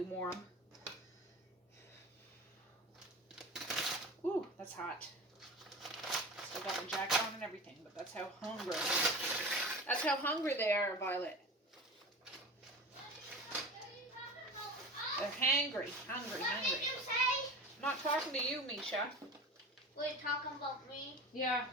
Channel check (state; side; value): normal; both; correlation 0.33